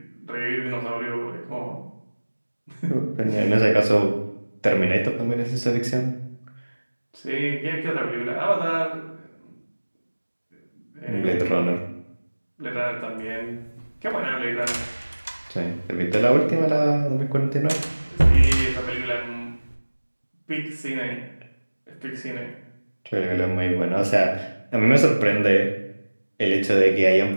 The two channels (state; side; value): inverted; both; correlation -1.00